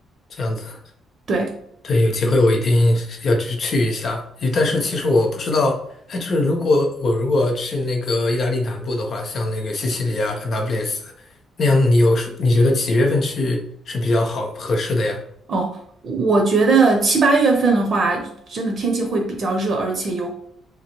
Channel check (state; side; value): normal; both; correlation 0.78